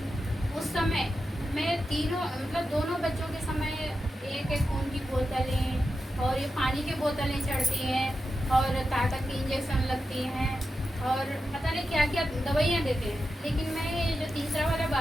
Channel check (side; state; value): both; normal; correlation 0.90